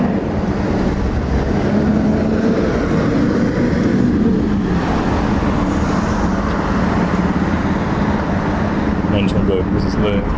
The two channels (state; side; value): identical; both; correlation 1.00